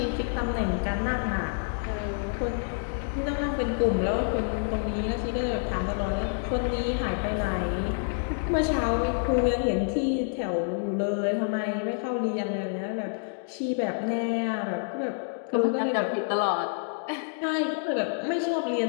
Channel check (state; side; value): silent; right; digital silence